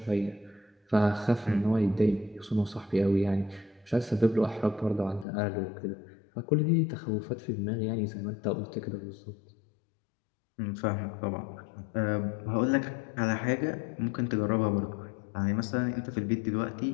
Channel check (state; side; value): drops out; right; at 5.2 s